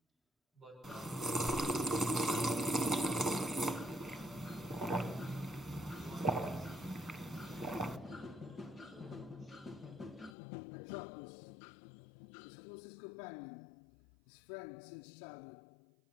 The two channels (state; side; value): drops out; right; at 10.4 s